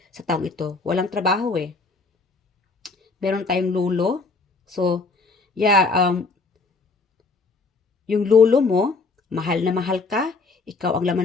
sa taong ito. Walang trabaho eh. Meron tayong lolo. So, yeah, yung lolo mo, mahal na mahal ka, ikaw ang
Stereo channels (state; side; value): quieter; right; 4.0 dB